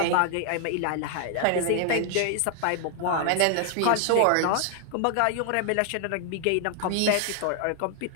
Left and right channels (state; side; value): different; both; correlation 0.00